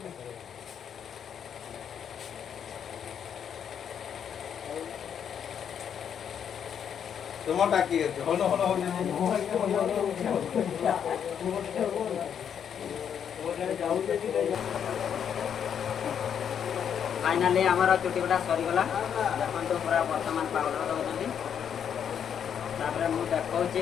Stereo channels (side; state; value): right; quieter; 8.2 dB